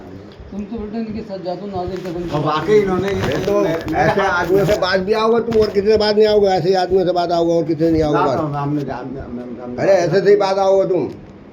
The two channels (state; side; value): identical; both; correlation 1.00